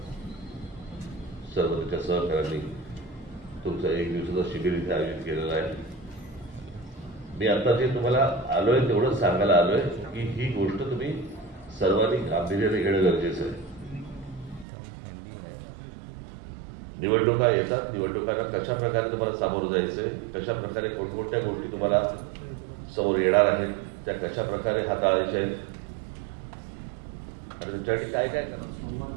सर्व त्याच्या सहकाऱ्यांनी तुमचं 1 दिवसाचं शिबिर इथे आयोजित केलेलं आहे. मी आता जे तुम्हाला आलोय तेवढंच सांगायला आलोय की ही गोष्ट तुम्ही सर्वांनी गांभीर्याने घेणं गरजेचं आहे. निवडणुका येतात, निवडणुकांना कशा प्रकारे तुम्हाला सामोरं जायचंय, कशा प्रकारे कोणकोणत्या गोष्टी तुम्हाला समोर येणार आहेत, त्या कशा प्रकारे हाताळायच्या आहेत आणि तुमच्यासाठी काय काय करा.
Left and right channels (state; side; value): drops out; left; at 14.7 s